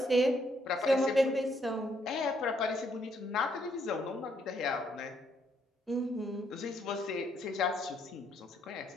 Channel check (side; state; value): both; normal; correlation 0.72